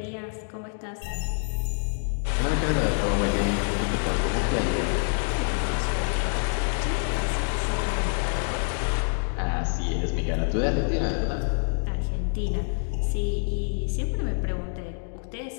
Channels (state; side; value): silent; right; digital silence